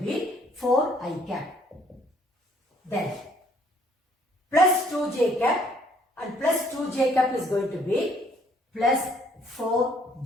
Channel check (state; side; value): normal; both; correlation 0.63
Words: 4i cap. Then plus 2j cap and plus 2j cap is going to be plus